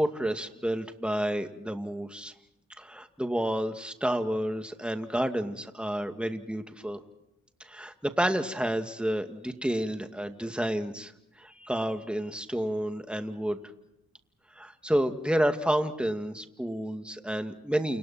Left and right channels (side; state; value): both; normal; correlation 0.93